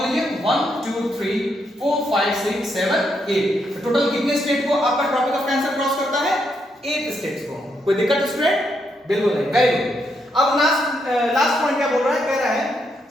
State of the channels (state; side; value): normal; both; correlation 0.78